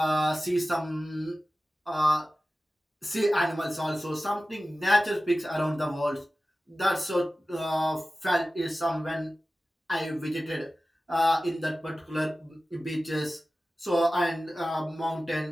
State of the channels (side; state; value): both; normal; correlation 0.96